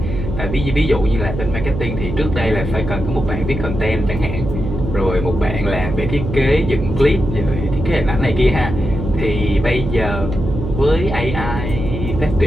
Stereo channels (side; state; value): right; noise; hum, 5 dB below the sound